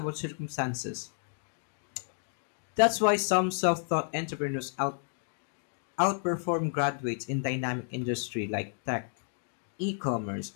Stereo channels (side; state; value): right; silent; digital silence